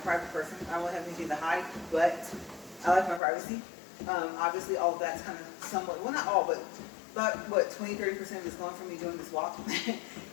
person. I don't have anything to hide, but I like my privacy. Obviously, all of that's kind of somewhat, well, not all, but about, what, 20-30% of it's gone from me doing this walk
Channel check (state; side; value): drops out; right; at 3.2 s